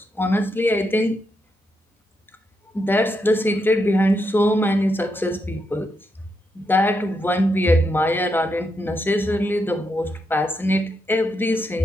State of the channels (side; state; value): both; normal; correlation 0.82